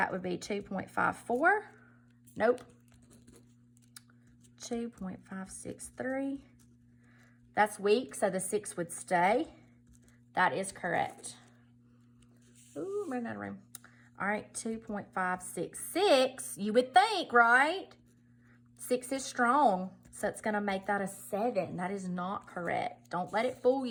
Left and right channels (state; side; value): identical; both; correlation 1.00